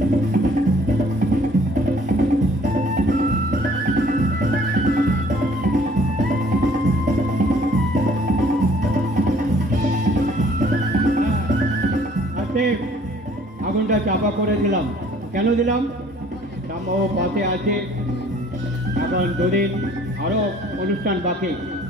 আগুনটা চাপা করে দিলাম। কেন দিলাম? রামবাবু পাশে আছে, এখন দুদিন আরও অনুষ্ঠান বাকি,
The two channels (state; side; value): normal; both; correlation 0.57